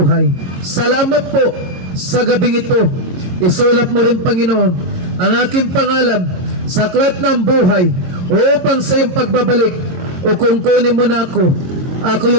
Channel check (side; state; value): left; late; 22 ms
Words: Salamat po sa gabing ito. Isulat mo rin, Panginoon, ang aking pangalan sa aklat ng buhay upang sa iyong pagbabalik o kung kunin mo na ako